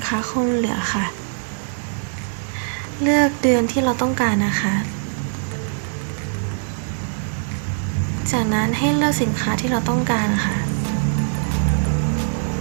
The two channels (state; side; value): silent; left; digital silence